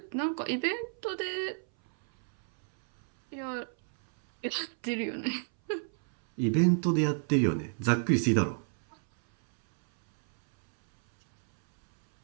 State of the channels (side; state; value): left; silent; 58 dB below the other